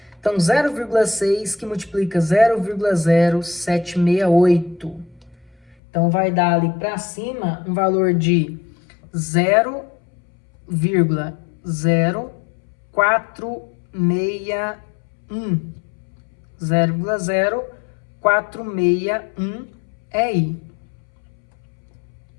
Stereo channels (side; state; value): right; drops out; at 5.8 s